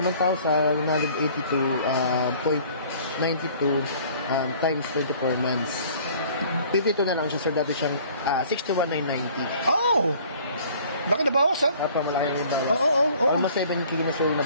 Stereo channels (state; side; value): inverted; both; correlation -0.53